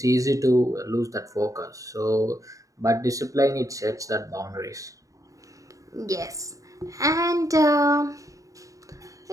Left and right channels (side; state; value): left; late; 0.16 ms